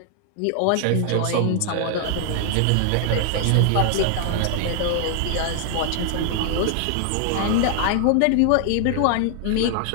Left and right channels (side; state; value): both; different; correlation 0.00